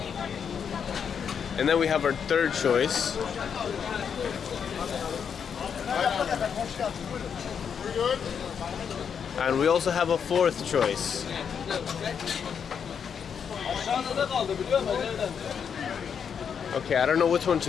And then we have our third choice. And we also have a fourth choice. Okay, I don't know which one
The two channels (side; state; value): right; quieter; 7.2 dB